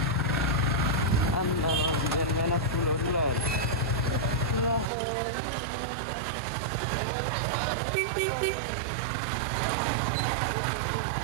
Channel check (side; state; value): left; drops out; at 4.9 s